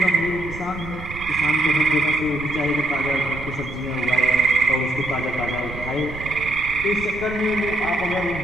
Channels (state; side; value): noise; right; rumble, 12 dB below the sound